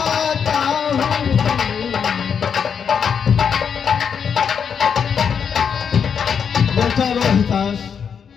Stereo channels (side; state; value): right; quieter; 7.1 dB